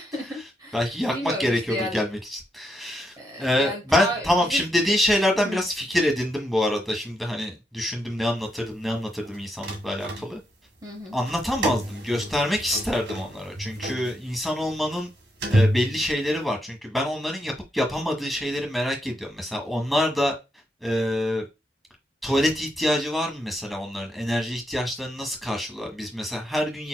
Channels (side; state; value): both; normal; correlation 0.81